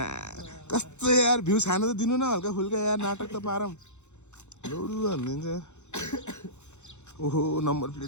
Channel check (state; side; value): late; right; 0.83 ms